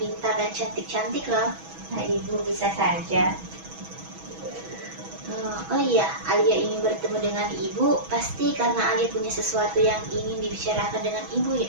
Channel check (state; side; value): late; left; 6.2 ms